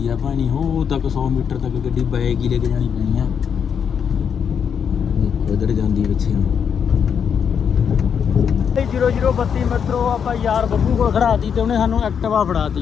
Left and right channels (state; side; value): quieter; right; 7.4 dB